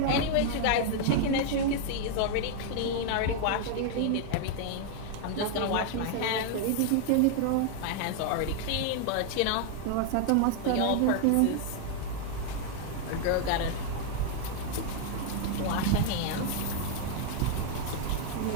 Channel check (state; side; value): different; both; correlation 0.00